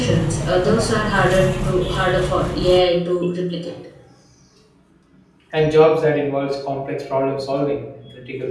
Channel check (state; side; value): identical; both; correlation 1.00